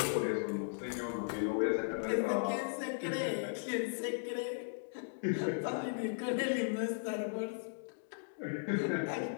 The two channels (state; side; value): silent; right; digital silence